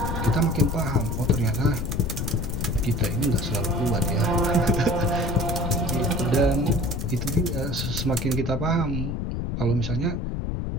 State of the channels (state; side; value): noise; left; rumble, 2 dB below the sound